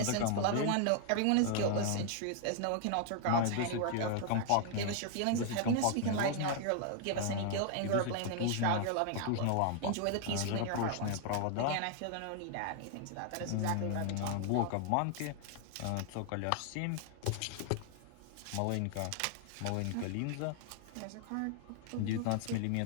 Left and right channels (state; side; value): different; both; correlation 0.00